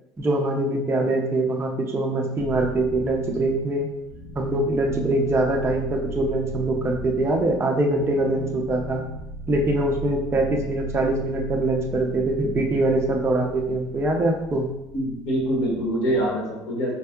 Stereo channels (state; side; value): normal; both; correlation 0.58